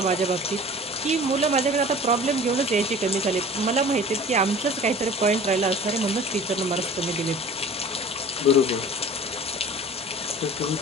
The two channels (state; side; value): normal; both; correlation 0.43